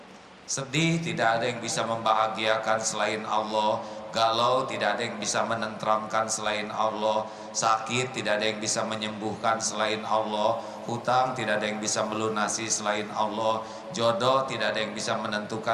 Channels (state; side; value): identical; both; correlation 1.00